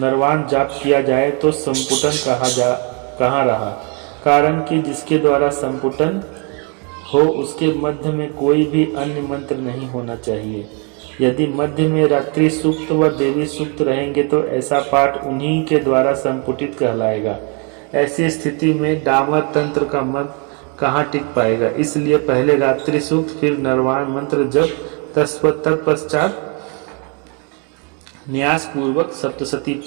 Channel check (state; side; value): quieter; left; 34.5 dB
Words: जाप किया जाए तो संपुटन कहाँ रहा। कारण कि जिसके द्वारा संपुटन हो उसके मध्य में कोई भी अन्य मंत्र नहीं होना चाहिए। यदि मध्य में रात्रि सूक्त व देवी सूक्त रहेंगे तो ऐसा पाठ उन्हीं के द्वारा संपुटित कहलाएगा। ऐसी स्थिति में डामर तंत्र का मत कहाँ टिक पाएगा। इसलिए पहले रात्रि सूक्त फिर नरवाण मंत्र जप तत्पश्चात न्यास पूर्वक सप्तशती